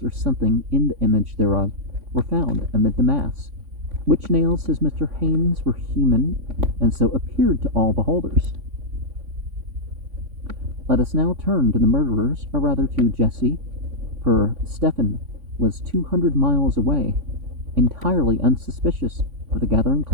or something in the image thereof were found amid the mass, which nails, says Mr. Haynes, were human, and so appeared to all beholders. Let us now turn to the murderers, or rather to Jesse, for Stephen was 200 miles away, entirely unsuspicious of the gathering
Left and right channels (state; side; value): late; left; 3.5 ms